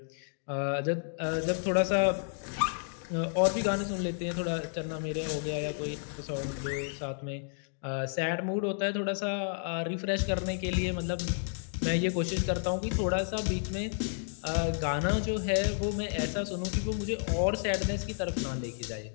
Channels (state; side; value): silent; right; digital silence